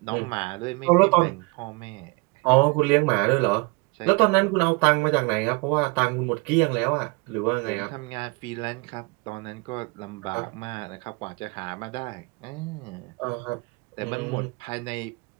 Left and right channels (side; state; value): left; quieter; 28.4 dB